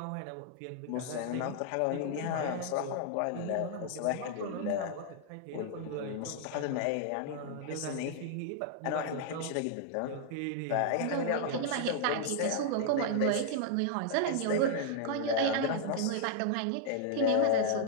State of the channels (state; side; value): different; both; correlation -0.01